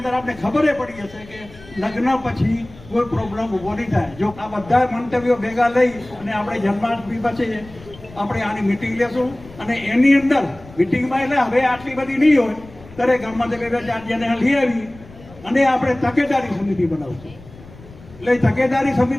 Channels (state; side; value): noise; left; rumble, 20 dB below the sound